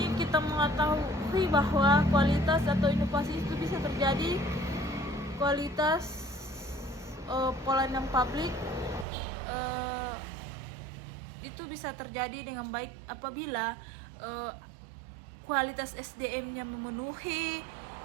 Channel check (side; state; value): left; drops out; at 9.1 s